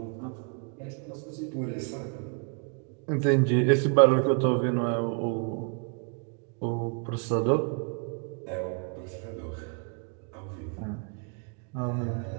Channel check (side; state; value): left; quieter; 38.3 dB